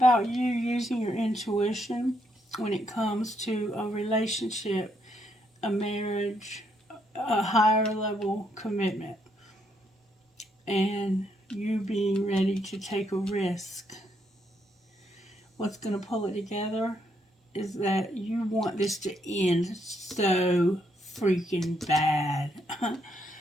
you using your intuition when it comes to a relationship, a marriage, a higher level commitment, and you being ready to take a risk. What's going to pull it together is that you want this to end so freaking bad.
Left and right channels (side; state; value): both; normal; correlation 0.76